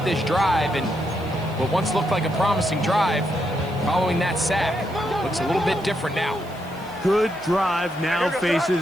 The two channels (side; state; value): right; noise; hiss, 25 dB below the sound